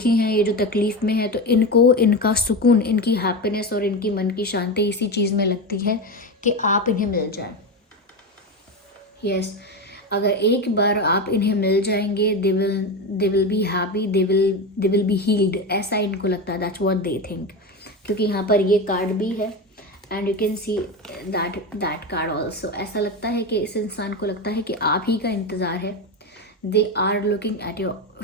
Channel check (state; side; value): normal; both; correlation 0.19